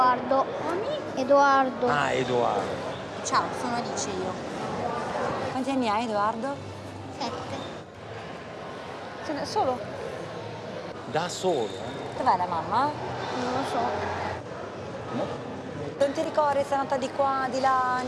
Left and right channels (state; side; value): identical; both; correlation 1.00